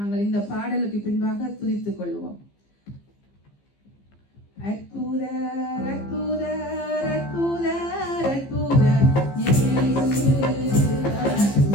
இந்த பாடலுக்கு பின்பாக துதித்துக் கொள்வோம். அற்புதர் அற்புதர் அற்புதர் அற்புதர் இயேசு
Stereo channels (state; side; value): late; right; 15 ms